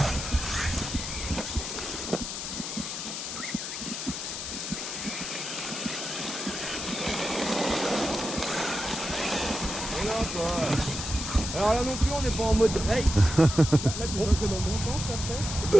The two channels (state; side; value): noise; left; hiss, 5 dB below the sound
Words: Alors là non plus on n'est pas en mode race. Là tu vas que dans mon sens après. Pas